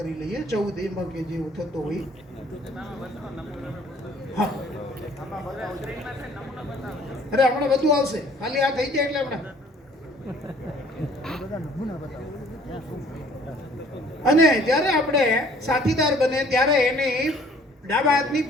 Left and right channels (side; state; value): both; normal; correlation 0.56